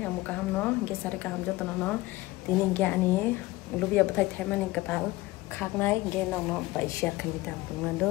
amu kaham no, ge sare kaham jotno no. Tini ge ani lubiya bathai thaimani katal khaknai ge nong no baisya khani tam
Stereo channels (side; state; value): right; quieter; 19.5 dB